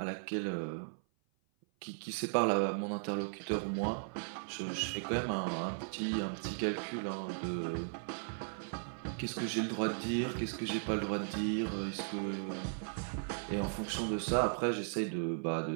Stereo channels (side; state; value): left; silent; 53 dB below the other